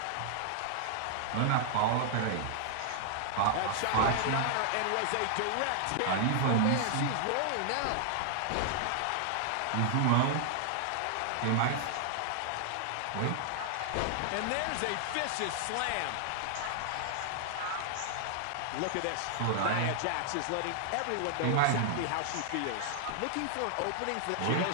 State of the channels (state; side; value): different; both; correlation -0.01